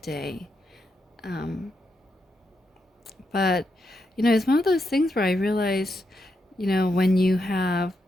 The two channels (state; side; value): normal; both; correlation 0.83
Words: But, it's one of those things where I realize, when you have